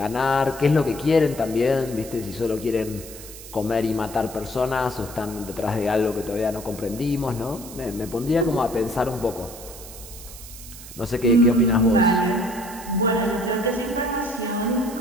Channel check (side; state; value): right; noise; hiss, 15 dB below the sound